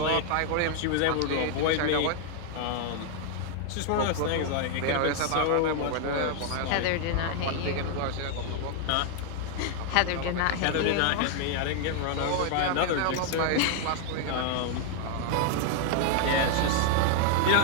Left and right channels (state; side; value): different; both; correlation 0.00